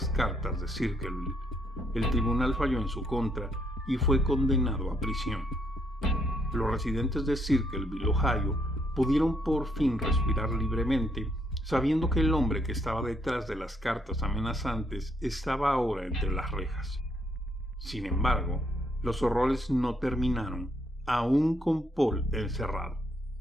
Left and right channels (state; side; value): normal; both; correlation 0.73